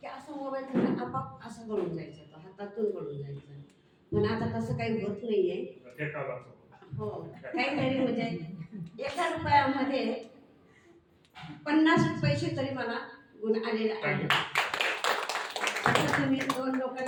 की असं मोबाईल घेऊन आपाप असं गळून जायचं, तो हातातून गळून जायचं. पण आता तसं काही होत नाहीये. हो, काहीतरी म्हणजे 1 रुपयामध्ये 50 पैसे तरी मला गुण आलेले आहे. असं तुम्ही 2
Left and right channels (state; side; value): identical; both; correlation 1.00